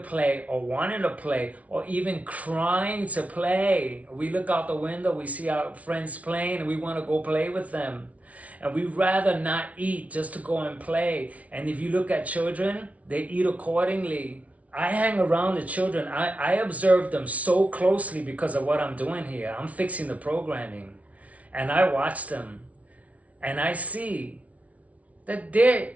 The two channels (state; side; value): late; left; 0.067 ms